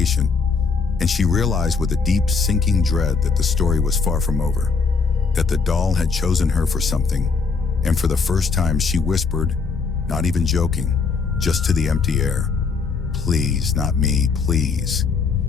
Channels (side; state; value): right; quieter; 4.9 dB